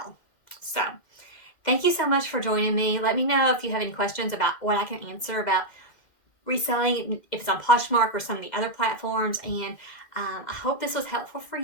So thank you so much for joining me. Let me know if you have any questions about what I can answer about reselling, if it's on Poshmark or some of the other platforms. And I hope this was helpful for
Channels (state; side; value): late; right; 2.1 ms